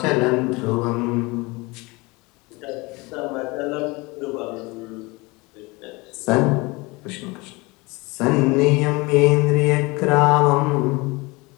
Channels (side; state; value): right; quieter; 24.8 dB